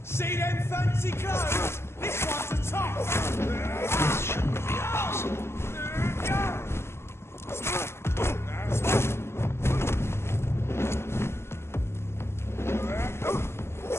See them fancy clothes? This one's a top! This shouldn't be possible.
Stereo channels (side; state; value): right; late; 0.12 ms